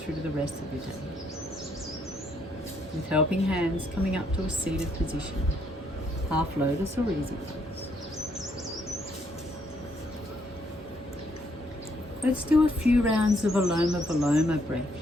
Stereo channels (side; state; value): both; normal; correlation 0.71